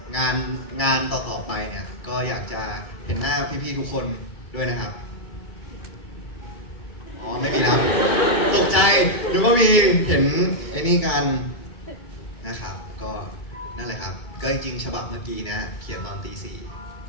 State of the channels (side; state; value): right; late; 2.3 ms